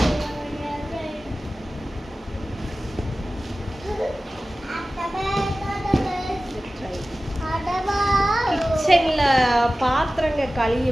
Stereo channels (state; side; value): normal; both; correlation 0.96